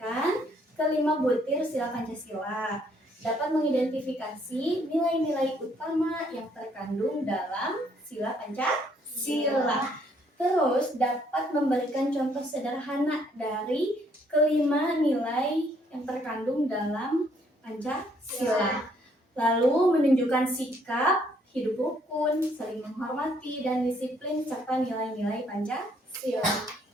kelima butir sila Pancasila, dapat mengidentifikasi nilai-nilai utama yang terkandung dalam sila Pancasila. Terus dapat memberikan contoh sederhana dari kelima nilai yang terkandung dalam Pancasila. Lalu menunjukkan sikap hidup rukun, saling menghormati, dan disiplin serta nilai-nilai Pancasila.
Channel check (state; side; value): normal; both; correlation 0.67